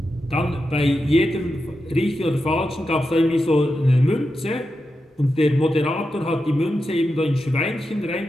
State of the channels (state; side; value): normal; both; correlation 0.89